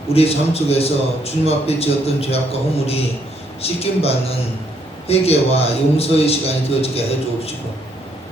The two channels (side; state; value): both; normal; correlation 0.71